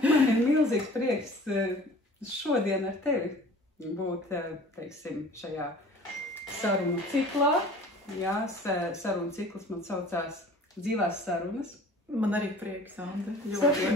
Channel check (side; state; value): both; normal; correlation 0.46